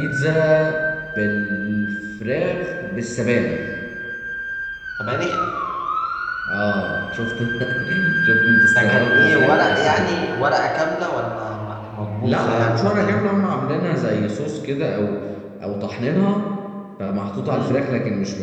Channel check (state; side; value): identical; both; correlation 1.00